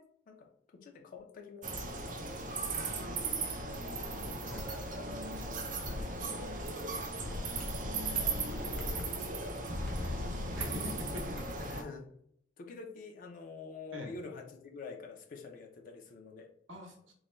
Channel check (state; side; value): normal; both; correlation 0.30